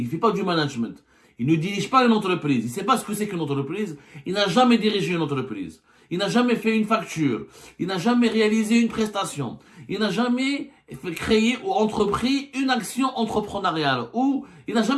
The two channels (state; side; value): identical; both; correlation 1.00